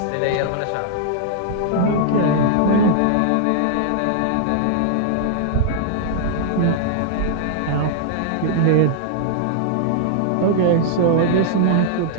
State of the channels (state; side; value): different; both; correlation -0.01